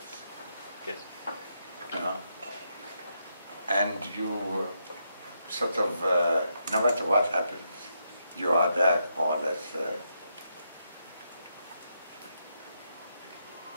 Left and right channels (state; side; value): inverted; both; correlation -0.81